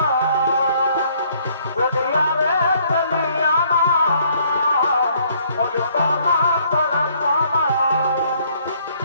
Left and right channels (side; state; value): both; inverted; correlation -0.64